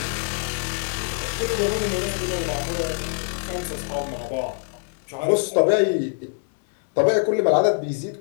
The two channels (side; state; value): right; silent; 63 dB below the other